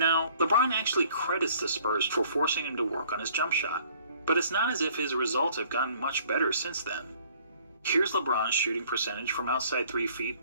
LeBron actually credits the Spurs for forcing him to work on his jump shot, but it's not as if his results have gotten much better since then. Here's LeBron's shooting percentage from outside 3 feet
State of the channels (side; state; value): both; inverted; correlation -0.57